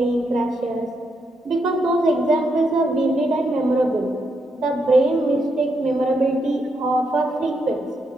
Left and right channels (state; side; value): normal; both; correlation 0.80